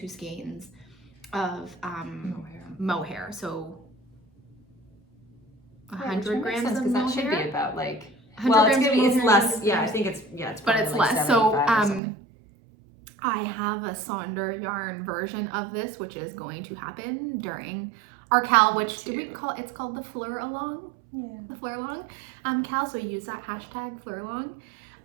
skeins of mohair. So 100 grams of mohair. That should be about like, it's less. Yeah, I think it's but it's like less. So I have a Sonder yarn version of this, which is going to happen during our KAL, which it's called the Fleuralong. Yeah. The Fleuralong KAL. So use that hashtag Fleuralong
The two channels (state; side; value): drops out; left; at 12.0 s